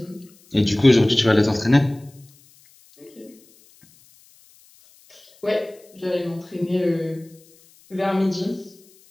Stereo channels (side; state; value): left; noise; hiss, 29 dB below the sound